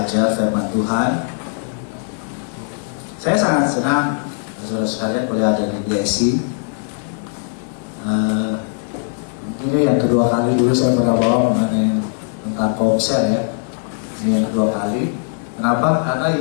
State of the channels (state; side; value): silent; right; digital silence